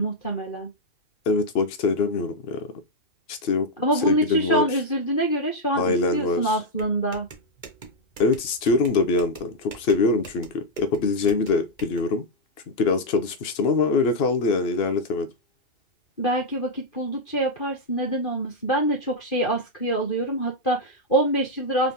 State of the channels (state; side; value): late; right; 2.9 ms